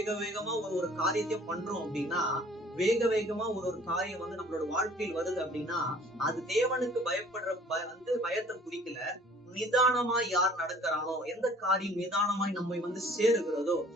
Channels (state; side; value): normal; both; correlation 0.53